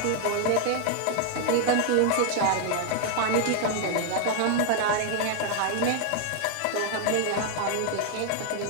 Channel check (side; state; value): both; different; correlation 0.00